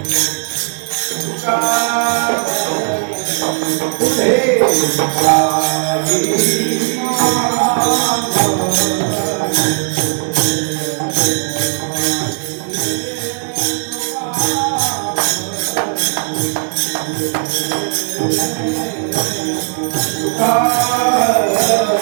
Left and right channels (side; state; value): left; silent; digital silence